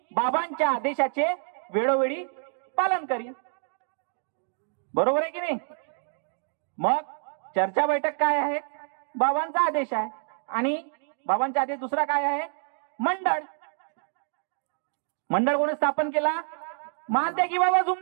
बाबांच्या आदेशाचे वेळोवेळी पालन करीन, बरोबर आहे की नाही? मग चर्चा बैठक काय आहे? बाबांचा आदेश आहे। आणि बाबांचा आदेश दुसरा काय आहे? मंडळ। मंडळ कोणी स्थापन केला? महात्यागी बाबा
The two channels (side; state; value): left; silent; digital silence